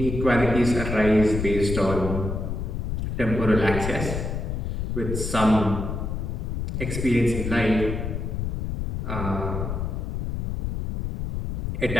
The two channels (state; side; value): noise; left; rumble, 2 dB below the sound